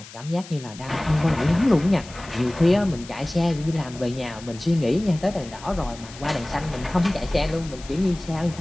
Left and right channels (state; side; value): noise; left; hiss, 17 dB below the sound